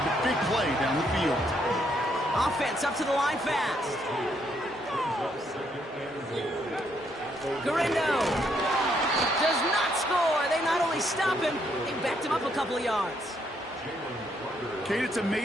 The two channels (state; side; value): normal; both; correlation 0.73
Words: the big play down the field. Offense up to the line fast. Garindo does not score. They not only stop him, they backed him up a couple of yards. Kate, it's